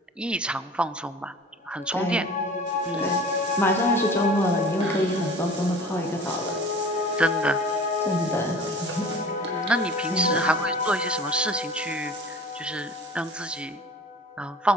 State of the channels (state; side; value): normal; both; correlation 0.42